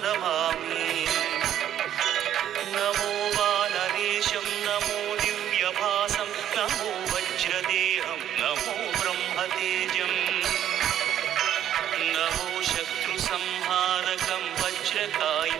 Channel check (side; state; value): left; quieter; 10.8 dB